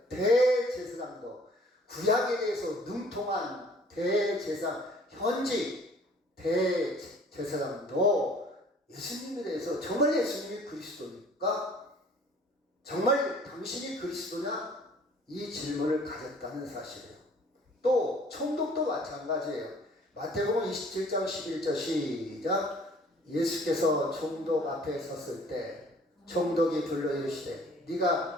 대제사장도, 구약에 대해서 능통한 대제사장, 현직 대제사장도 예수님에 대해서 정말 예수님이 그리스도입니까? 정말 당신이 그리스도냐? 이 질문을 가졌다는 사실이에요. 또, 총독도 마찬가지예요. 마태복음 27장 11절 시작. 예수께서 총독 앞에 섰을 때 총독이 불러 이르시되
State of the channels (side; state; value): both; normal; correlation 0.54